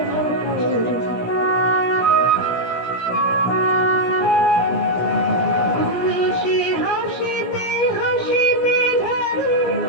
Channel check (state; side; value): late; right; 17 ms